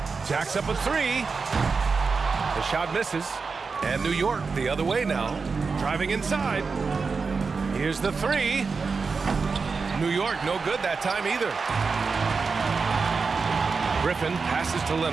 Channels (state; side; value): quieter; left; 4.8 dB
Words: Jacks up a 3. The shot misses. And New York the other way now. Driving inside. Here's the 3. New York no good that time either. Griffin passes to